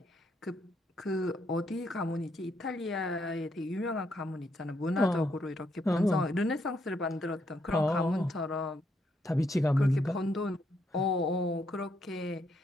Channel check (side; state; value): both; normal; correlation 0.76